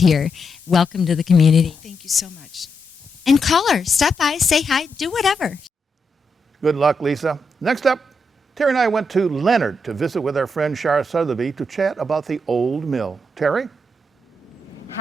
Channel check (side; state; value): both; normal; correlation 0.83